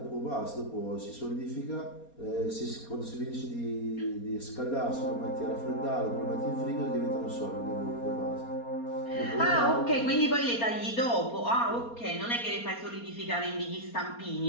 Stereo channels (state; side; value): late; right; 4.3 ms